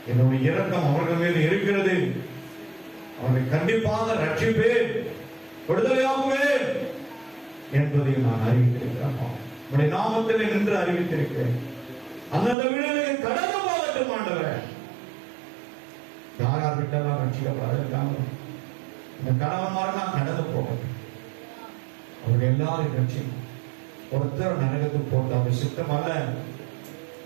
என்னுடைய இரக்கம் அவர்கள் மீது இருக்கிறது. அவர்களை கண்டிப்பாக ரட்சிப்பேன், விடுதலையாகுவேன் என்பதையும் நான் அறிவித்திருக்கிறேன். உடைய நாமத்தில் நின்று அறிவித்திருக்கிறேன். அந்தந்த வீடுகளை கடந்து போகட்டும் ஆண்டவரே. யார் விட்டெல்லாம் ரட்சிக்கப்படாது, இந்த கணவன்மாரெல்லாம் கடந்து போகட்டும். அவர்கள் எல்லாரும் ரட்சிக்கும். ஒருத்தர் நரகத்துக்கு போட்டு அவர் சித்தம் அல்ல.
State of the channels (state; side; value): drops out; left; at 12.6 s